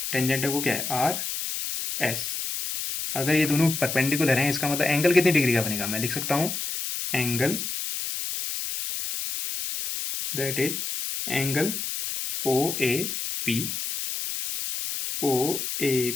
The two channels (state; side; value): noise; left; hiss, 4 dB below the sound